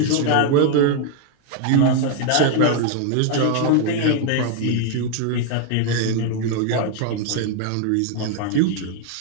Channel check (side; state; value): both; different; correlation 0.00